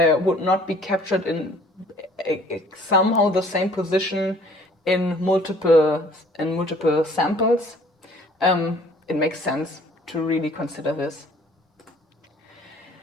would not be captured in somehow the same position in multiple samples, it makes sense to really consider this.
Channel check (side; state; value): both; normal; correlation 0.55